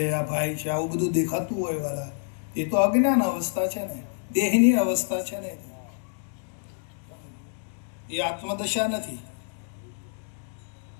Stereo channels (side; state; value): right; silent; digital silence